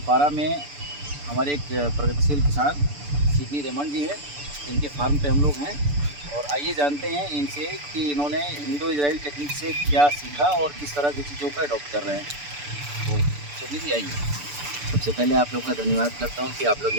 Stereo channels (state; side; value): late; left; 6.9 ms